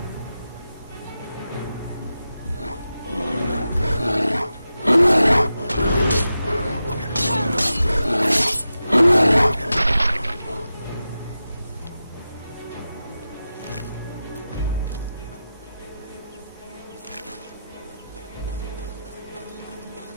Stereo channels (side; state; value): both; inverted; correlation -0.91